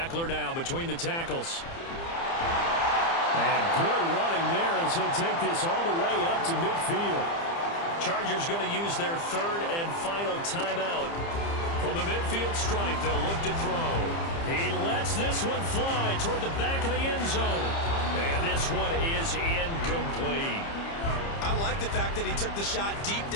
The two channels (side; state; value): right; late; 30 ms